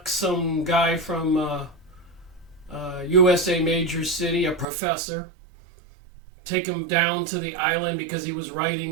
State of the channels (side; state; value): left; drops out; at 4.7 s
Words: some guy from USA major city, a professor, take him down to the island because he was